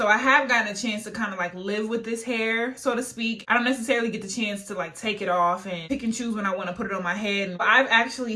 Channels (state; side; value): identical; both; correlation 1.00